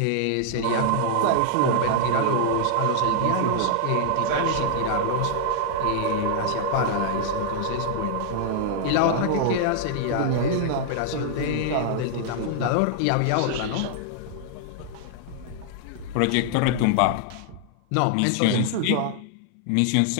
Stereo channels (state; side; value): different; both; correlation -0.01